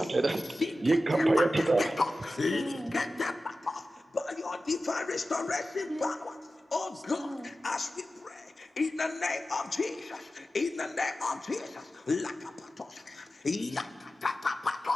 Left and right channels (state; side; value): normal; both; correlation 0.94